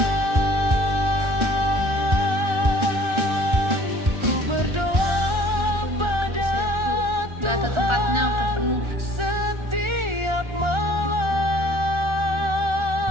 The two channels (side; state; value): left; late; 1.4 ms